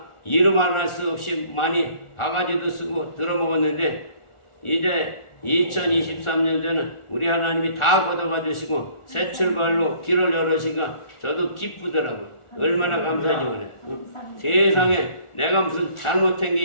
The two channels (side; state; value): right; late; 1.4 ms